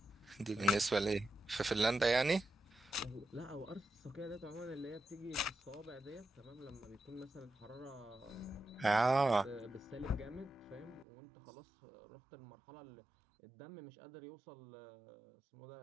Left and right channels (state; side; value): drops out; left; at 11.1 s